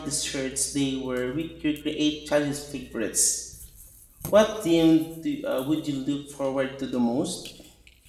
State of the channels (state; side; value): identical; both; correlation 1.00